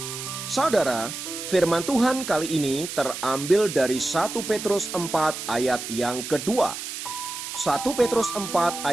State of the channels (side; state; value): right; noise; hiss, 8 dB below the sound